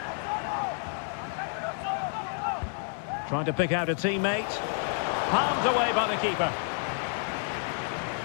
Trying to pick out a teammate. Palmed away by the keeper.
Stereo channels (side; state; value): right; silent; 58 dB below the other